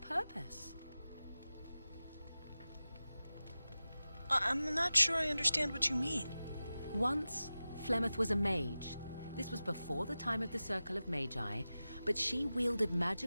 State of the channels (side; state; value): both; inverted; correlation -0.95